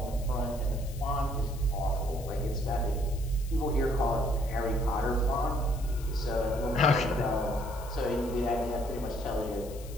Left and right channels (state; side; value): noise; left; hiss, 18 dB below the sound